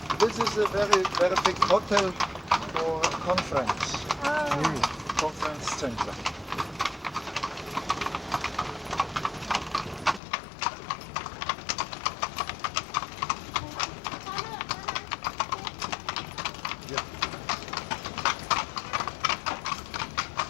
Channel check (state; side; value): drops out; right; at 10.2 s